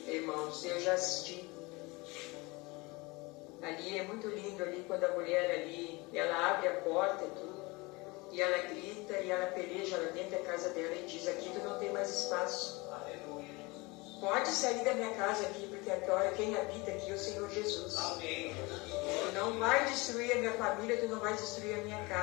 Irmãos, eu já assisti. Ali é muito lindo ali quando a mulher ali, ela abre a porta e tudo, e ela grita e ela peleja lá dentro da casa dela e diz: aqui tu não tem mais espaço. Aleluia. Pode sair da minha casa aqui, porque agora quem habita aqui é o Senhor Jesus. Amém. Tu não vai destruir a minha família, tu não vai destruir a minha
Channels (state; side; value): quieter; right; 24.8 dB